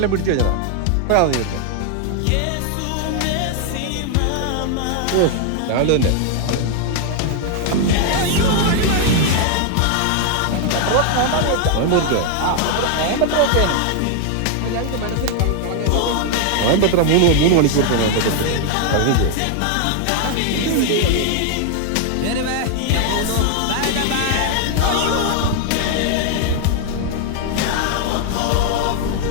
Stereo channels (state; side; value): different; both; correlation 0.00